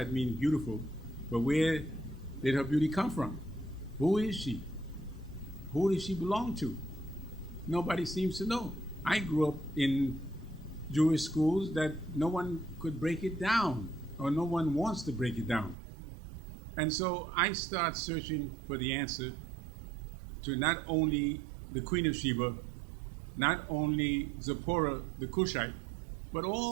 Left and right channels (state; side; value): drops out; left; at 15.8 s